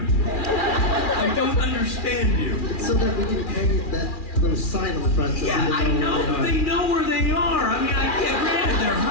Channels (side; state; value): right; late; 2.4 ms